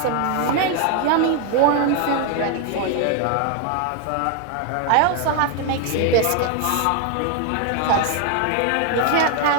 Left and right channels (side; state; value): both; different; correlation 0.00